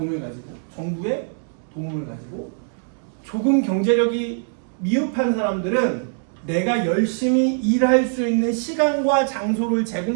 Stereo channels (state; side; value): silent; left; digital silence